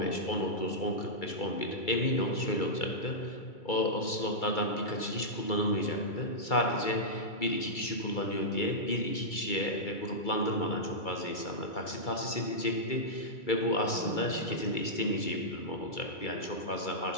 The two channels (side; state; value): right; late; 2.3 ms